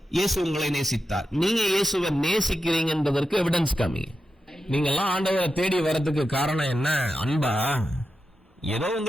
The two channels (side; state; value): both; normal; correlation 0.90